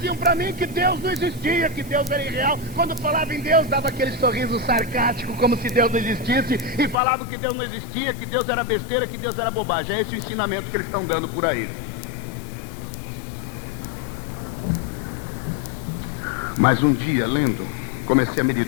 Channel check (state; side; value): drops out; right; at 7.0 s